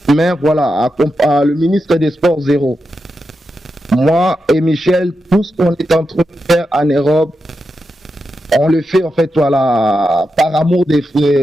mais voilà, le ministre des Sports, zéro. Moi et Michel, tout ce qu'on est en train de faire en Europe, on le fait en fait voilà par amour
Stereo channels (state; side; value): normal; both; correlation 0.88